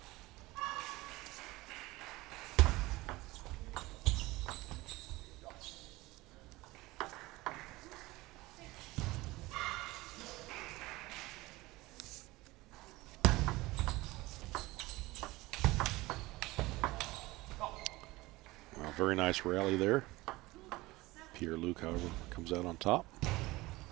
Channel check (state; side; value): quieter; left; 20.3 dB